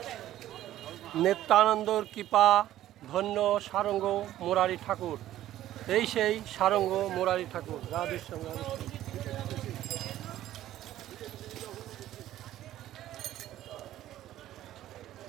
নিত্যানন্দর কৃপা ধন্য সারঙ্গ মুরারি ঠাকুর। এই সেই সারঙ্গ মুরারি ঠাকুর। রাধেশ্যাম রাধেশ্যাম।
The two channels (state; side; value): quieter; left; 13.4 dB